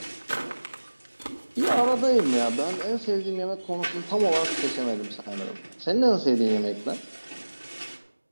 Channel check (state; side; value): inverted; both; correlation -1.00